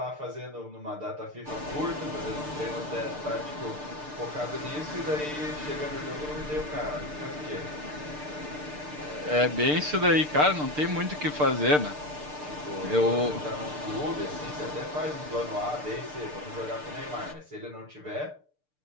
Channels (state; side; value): late; left; 6.7 ms